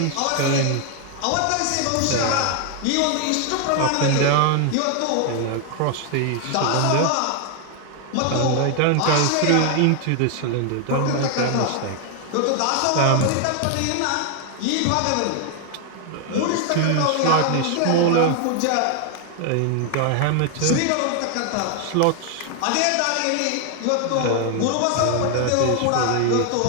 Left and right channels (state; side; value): different; both; correlation 0.00